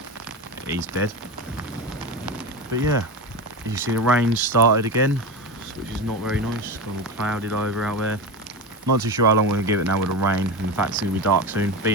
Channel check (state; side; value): normal; both; correlation 0.21